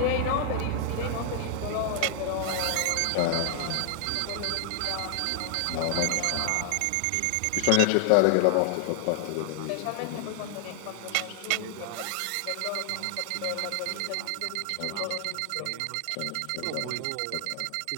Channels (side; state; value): both; different; correlation 0.00